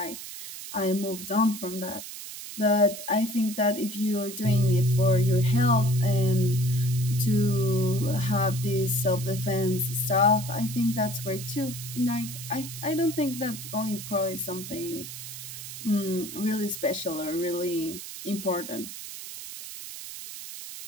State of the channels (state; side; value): noise; right; hiss, 10 dB below the sound